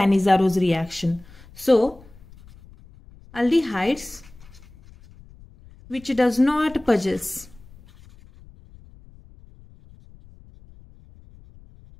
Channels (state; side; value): noise; left; rumble, 23 dB below the sound